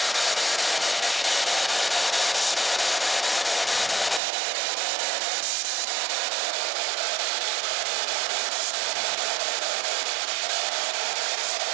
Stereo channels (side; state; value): left; drops out; at 4.2 s